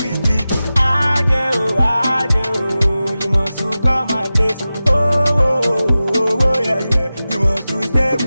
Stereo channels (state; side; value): inverted; both; correlation -0.95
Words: me. Ajay, you must come my place. Oh, yeah, you must stay